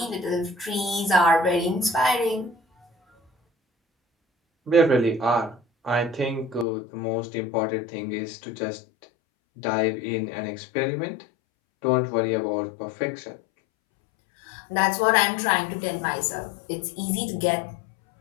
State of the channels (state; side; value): drops out; right; at 6.7 s